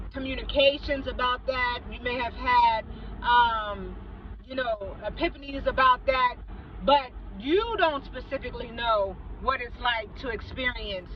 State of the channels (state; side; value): identical; both; correlation 1.00